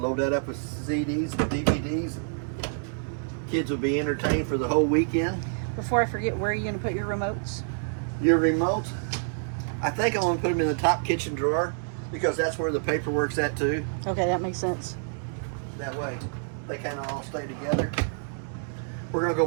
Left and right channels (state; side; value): silent; left; digital silence